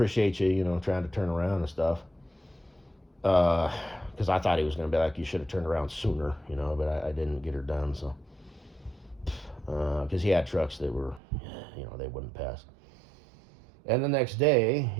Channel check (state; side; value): drops out; left; at 11.2 s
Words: you, trying to turn around and stuff. Because I thought he was going to be like, you should have turned around sooner, but I didn't get her done, so. Because he had trucks that were, they wouldn't pass. And the next day,